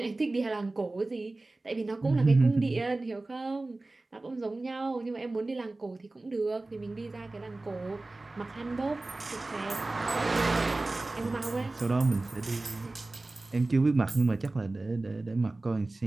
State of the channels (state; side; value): quieter; left; 3.0 dB